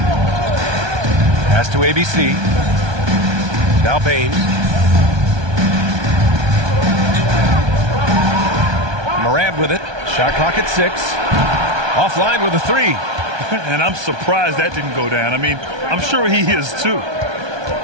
Pass to ABC. Now Bane. Morant with it. Shot clock at 6. Offline with a 3. And I'm surprised that didn't go down. I mean, I'm sure he is too.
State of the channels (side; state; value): left; late; 1.2 ms